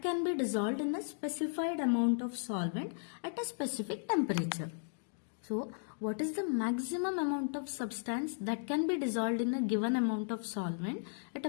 can be dissolved in a specified amount of solvent at a specific temperature. So, what is the maximum amount of substance that can be dissolved in a given amount of solvent at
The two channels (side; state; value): right; silent; digital silence